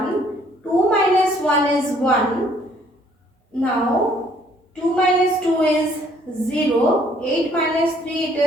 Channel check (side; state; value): both; normal; correlation 0.62